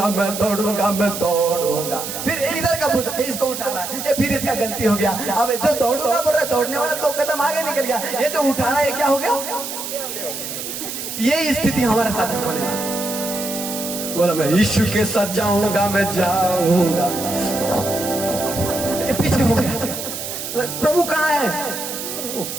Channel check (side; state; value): right; noise; hiss, 6 dB below the sound